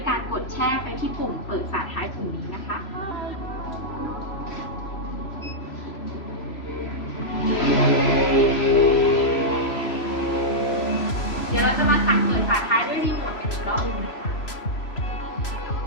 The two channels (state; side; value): late; right; 3.0 ms